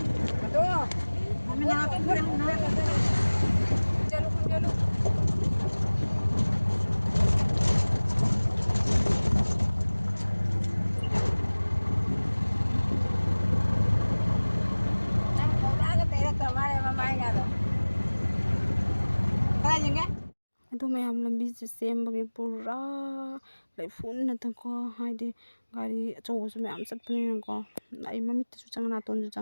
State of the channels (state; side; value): inverted; both; correlation -1.00